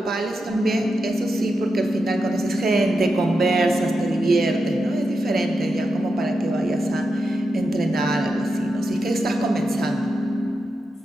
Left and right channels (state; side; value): normal; both; correlation 0.87